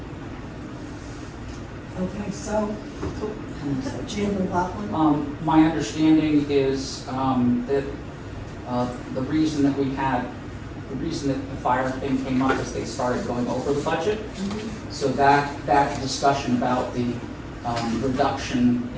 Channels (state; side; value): identical; both; correlation 1.00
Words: Okay, so, Jan McLaughlin? My understanding is that the reason that we had the reason that the fire thing came up is they started going over the budget. So that discussion about the reduction